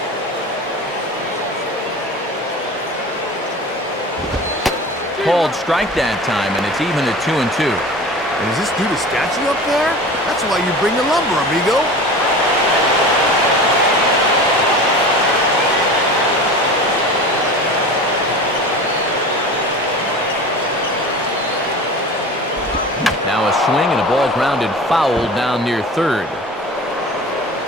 Called strike that time, and it's even at 2-2. And is this dude a statue up there? That's why you bring the lumber, amigo. Now a swing and a ball grounded foul down near third.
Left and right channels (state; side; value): normal; both; correlation 0.36